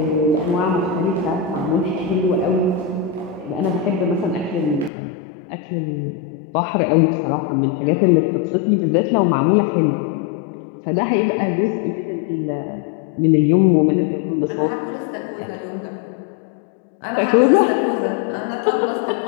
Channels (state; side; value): drops out; right; at 4.9 s